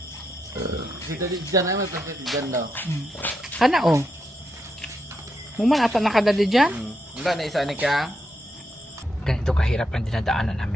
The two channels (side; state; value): both; normal; correlation 0.82